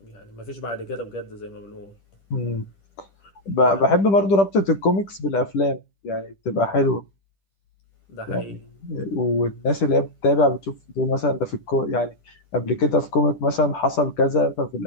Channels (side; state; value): right; late; 10 ms